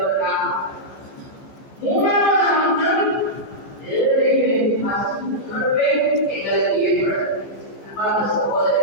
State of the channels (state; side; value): late; right; 15 ms